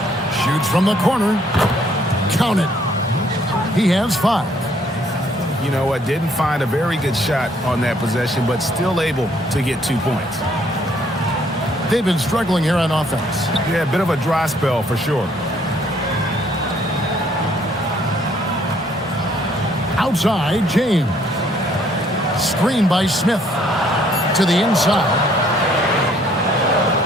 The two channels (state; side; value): normal; both; correlation 0.64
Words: Shoots from the corner. Count it. He has 5. You know what? Didn't find a very good shot on that possession, but still able to get 2 points. They've been struggling here on offense. Yeah, a bit of a dry spell for sure. Outside, James. Screen by Smith. To the inside.